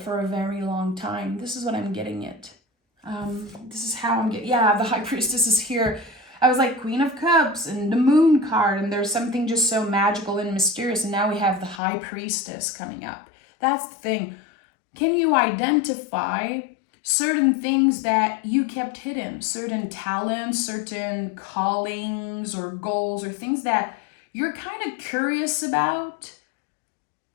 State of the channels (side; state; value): right; drops out; at 11.8 s